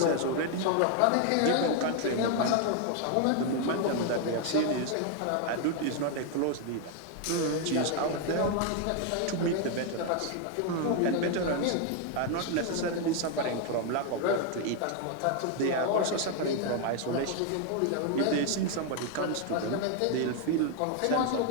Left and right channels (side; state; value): both; different; correlation 0.01